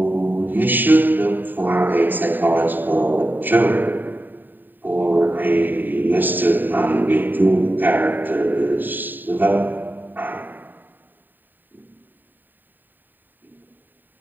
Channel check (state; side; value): late; left; 0.091 ms